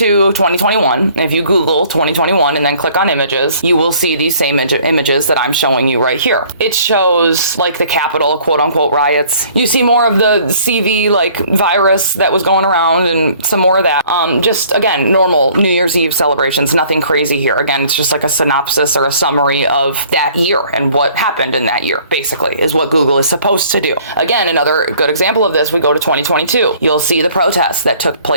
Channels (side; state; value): both; inverted; correlation -0.56